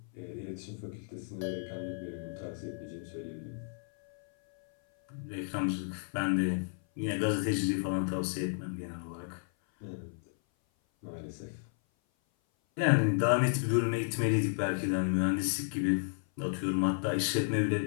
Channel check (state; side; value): silent; right; 56 dB below the other